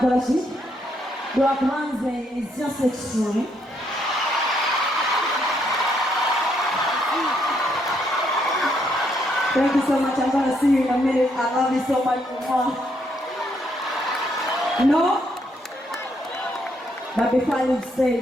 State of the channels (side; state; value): both; normal; correlation 0.74